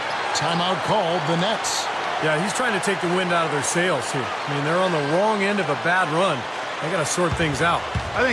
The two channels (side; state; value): both; identical; correlation 1.00